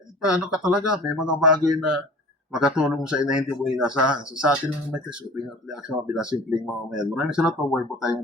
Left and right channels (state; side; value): normal; both; correlation 0.43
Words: paano ka talaga, may mga bagay na makatulong sa ina hindi mo inasahan. So sa atin lang may opinion at reaction, mga simpleng mga mayan. Maraming salamat po, buhay po tayong